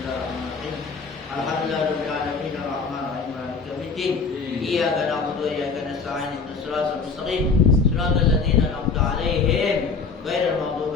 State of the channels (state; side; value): quieter; right; 4.8 dB